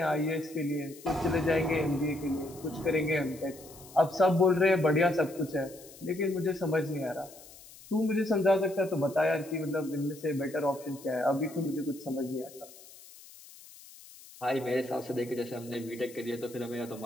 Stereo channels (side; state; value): left; noise; hiss, 20 dB below the sound